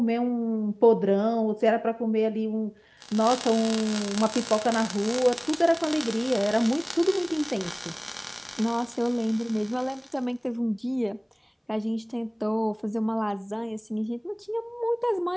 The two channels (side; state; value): both; identical; correlation 1.00